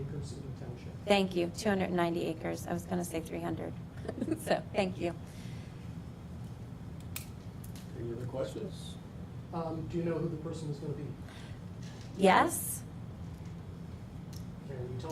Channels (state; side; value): identical; both; correlation 1.00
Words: acres in the township. Thank you, 290 acres. I was going to say 300. So, thank you. Any other questions? Do you know who the person is going to be? Yes? Can you